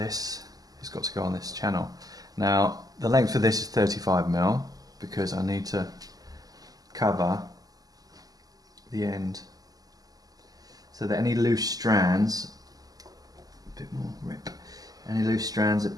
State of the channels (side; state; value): left; late; 0.18 ms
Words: has got to go on this channel. Now the length for this is 35mm because I need to cover the end so that any loose strands, a bit more rip, any loose strands are